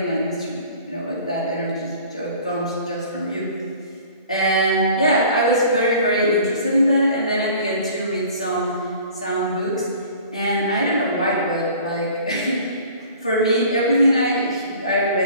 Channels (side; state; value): both; inverted; correlation -0.47